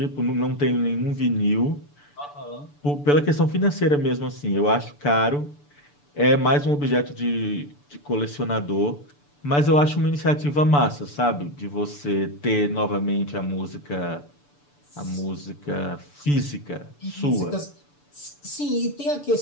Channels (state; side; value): late; right; 6.9 ms